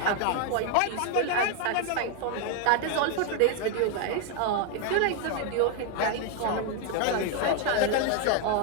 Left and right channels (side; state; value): both; different; correlation 0.01